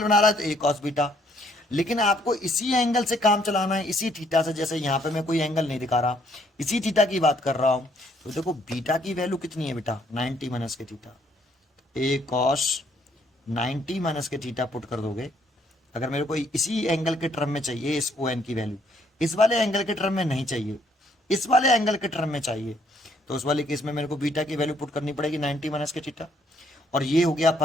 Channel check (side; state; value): both; normal; correlation 0.67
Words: बना रहा है तो ए कॉस बीटा, लेकिन आपको इसी एंगल से काम चलाना है, इसी थीटा से, जैसे यहाँ पे मैं कोई एंगल नहीं दिखा रहा, इसी थीटा की बात कर रहा हूं, तो देखो बीटा की वैल्यू कितनी है बेटा, 90 माइनस के थीटा, ए कॉस 90 माइनस के थीटा पुट कर दोगे, अगर मेरे को इसी एंगल के टर्म में चाहिए इस ओ एन की वैल्यू, इस वाले एंगल के टर्म में नहीं चाहिए, इस वाले एंगल के टर्म में चाहिए, तो उस वाले केस में मेरे को बीटा की वैल्यू पुट करनी पड़ेगी 90 माइनस के थीटा, और ये हो गया